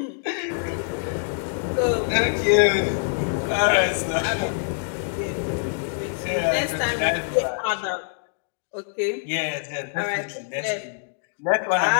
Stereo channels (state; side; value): silent; right; digital silence